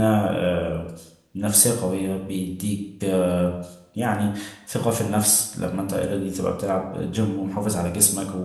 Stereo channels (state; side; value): identical; both; correlation 1.00